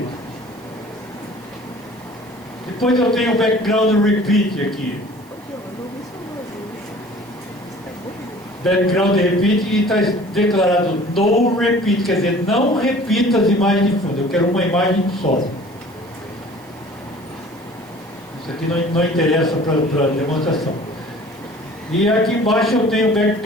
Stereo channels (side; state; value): right; noise; hiss, 28 dB below the sound